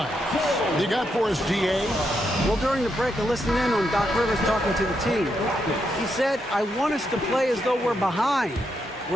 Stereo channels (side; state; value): both; normal; correlation 0.81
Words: You got for us, DA? Well, during the break, I listened in on Doc Rivers talking to the team. He said, I want us to play as though we're behind.